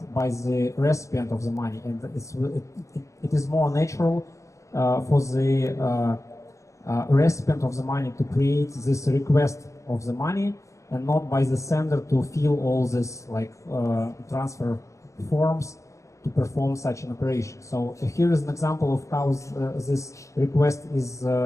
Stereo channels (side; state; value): right; late; 0.15 ms